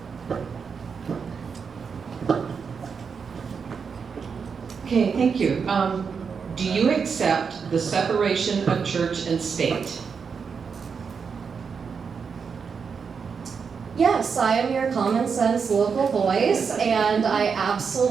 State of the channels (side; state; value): left; quieter; 5.9 dB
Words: Okay, thank you. Do you accept the separation of church and state? Yes, I am your common sense local voice, and I